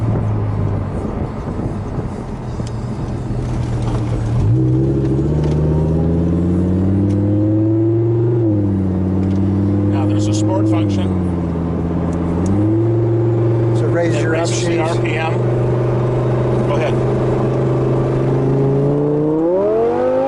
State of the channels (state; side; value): identical; both; correlation 1.00